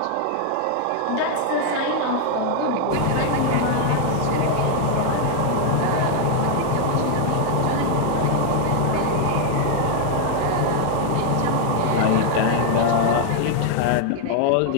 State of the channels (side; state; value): both; different; correlation 0.00